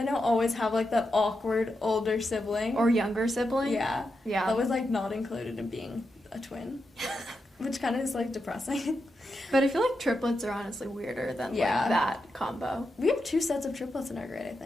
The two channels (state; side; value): normal; both; correlation 0.87